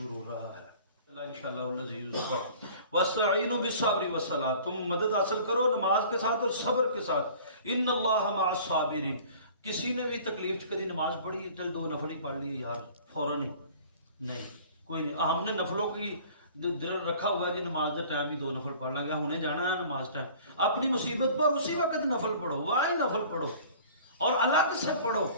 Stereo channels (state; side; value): inverted; both; correlation -0.47